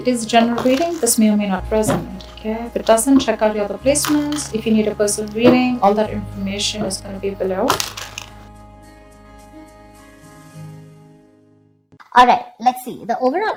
It is general reading. This may or may not resonate. Okay, if it doesn't, check out your other placements. If you need a personal reading, all that information is going to be below. Alright, let's see. The overall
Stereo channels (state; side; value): identical; both; correlation 1.00